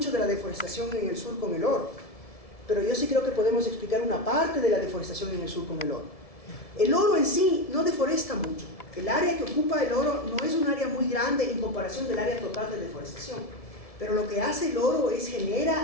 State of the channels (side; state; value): right; late; 1.7 ms